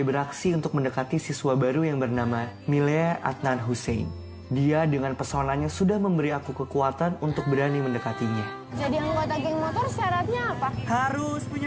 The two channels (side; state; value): both; identical; correlation 1.00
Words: beraksi untuk mendekati siswa baru yang bernama Milea Adnan Hussein. Dia dengan pesonanya sudah memberi aku kekuatan untuk berani mendekatinya. Jadi anggota geng motor syaratnya apa? Harus